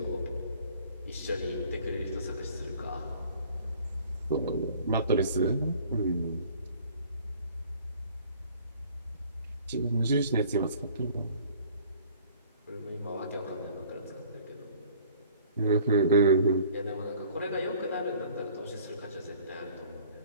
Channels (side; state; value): both; inverted; correlation -0.52